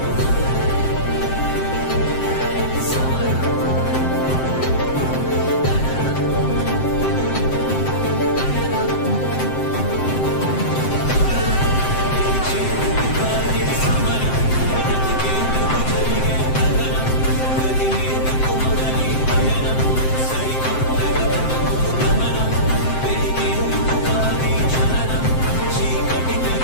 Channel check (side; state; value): right; late; 7.7 ms